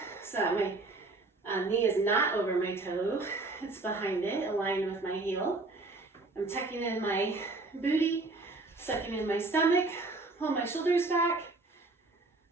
so that my knee is not over my toe. It's behind it, aligned with my heel. I'm tucking in my booty, sucking in my stomach, pull my shoulders back.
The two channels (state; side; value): quieter; left; 3.3 dB